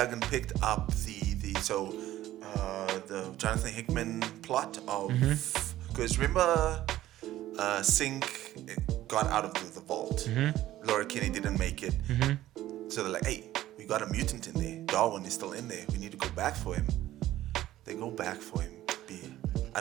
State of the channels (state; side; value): quieter; left; 14.3 dB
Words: picked up the Jonathan Hickman plot of because remember Sync got out of the vault. Laura Kinney didn't make it. So they're like, hey, we got a mutant in there. Darwin is still in there. We need to go back for him. They go back for him. I